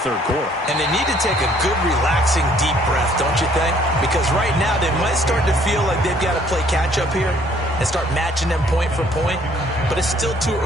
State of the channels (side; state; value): both; normal; correlation 0.61